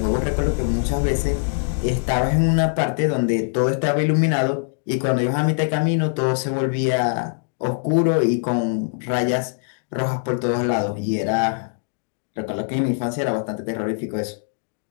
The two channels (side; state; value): right; silent; digital silence